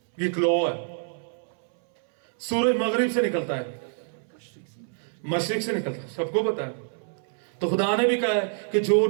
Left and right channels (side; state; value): left; silent; 61 dB below the other